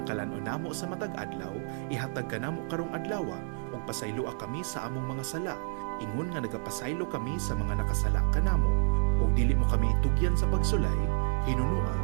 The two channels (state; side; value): silent; left; 56 dB below the other